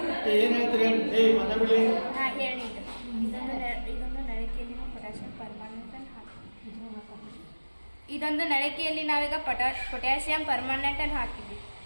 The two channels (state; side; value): inverted; both; correlation -1.00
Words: ಏನಾಯ್ತು ಹೇಳಿ ಮಾತಾಡಲಿ. ಹಾಂ ಹೇಳಿ. ಇದೊಂದು ನಳಿಕೆಯಲ್ಲಿ ಪೊಟ್ಯಾಷಿಯಂ ಪರ್ಮಾನೆಂಟ್ ಅನ್ನು ಹಾಕಿ ಇದೊಂದು ನಳಿಕೆಯಲ್ಲಿ ನಾವೀಗ ಪೊಟ್ಯಾಷಿಯಂ ಪರ್ಮಾನೆಂಟ್ ಅನ್ನು ಹಾಕಿದ್ವಿ.